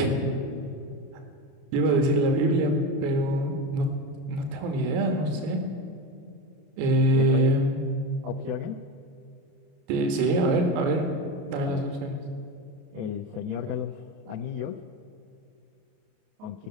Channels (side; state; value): left; late; 29 ms